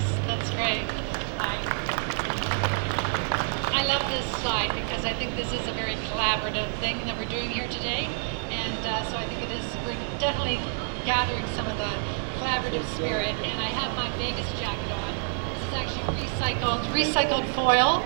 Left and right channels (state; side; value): silent; left; 60 dB below the other